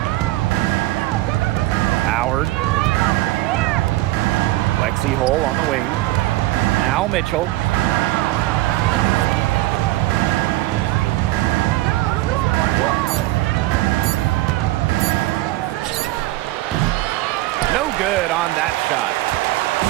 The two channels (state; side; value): quieter; left; 17.7 dB